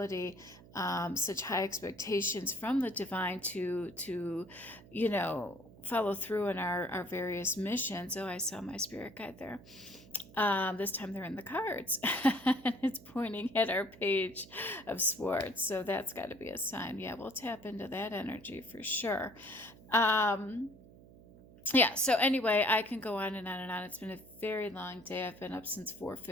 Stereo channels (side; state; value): right; noise; hum, 21 dB below the sound